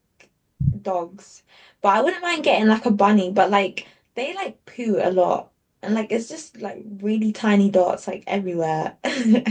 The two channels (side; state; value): both; identical; correlation 1.00